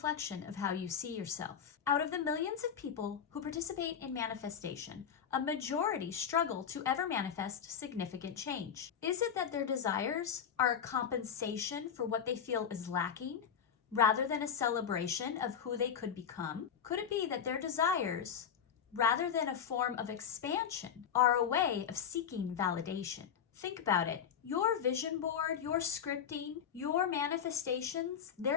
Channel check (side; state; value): right; quieter; 7.9 dB